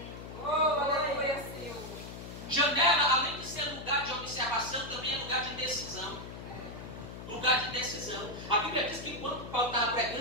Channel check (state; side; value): noise; left; hum, 11 dB below the sound